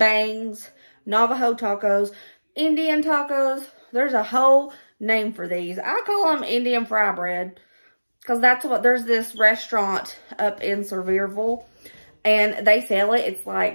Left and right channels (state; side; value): inverted; both; correlation -1.00